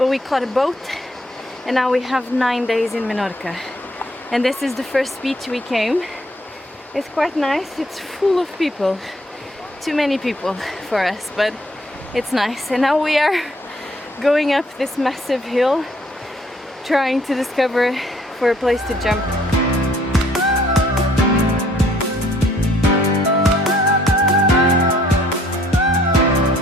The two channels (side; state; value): both; normal; correlation 0.63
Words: we caught a boat and now we have 9 days in Menorca. And this is the first beach we came. It's quite nice, it's full of people. Too many people for us, but it's nice. And now we are going up this massive hill, trying to discover for a place to jump.